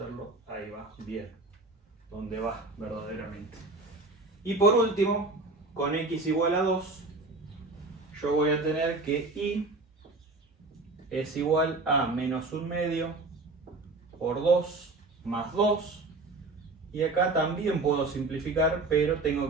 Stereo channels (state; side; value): quieter; left; 3.3 dB